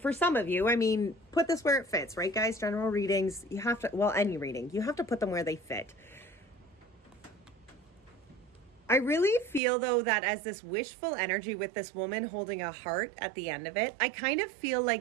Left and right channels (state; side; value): drops out; left; at 9.6 s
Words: some of you. I mean, put this where it fits, right, guys? General readings, you have to, any reading, you have to put them where they fit. I really feel, though, that as this wishful energy with this woman holding a heart at the end of it, I kind of feel